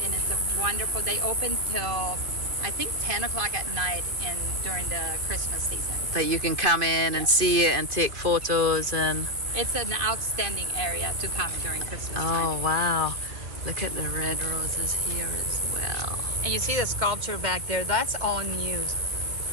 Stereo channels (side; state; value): left; late; 2.2 ms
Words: and it's a wonderful, they open till I think 10 o'clock at night during the Christmas season. That you can come in and see it and take photos and... It's an outstanding area to come during Christmas Oh, time. wow. Look at the red roses here as well. And you see the sculpture back there, that's all new.